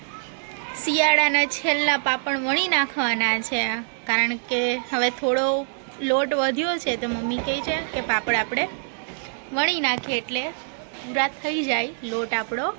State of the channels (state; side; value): silent; left; digital silence